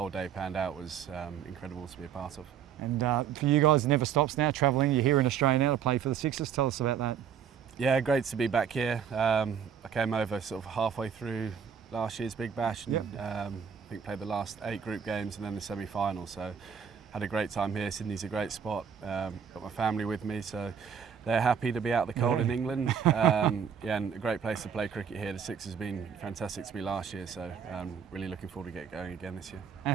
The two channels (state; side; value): quieter; left; 7.7 dB